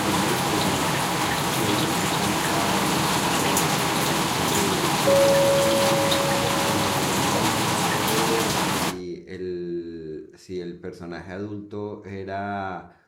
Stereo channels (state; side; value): identical; both; correlation 1.00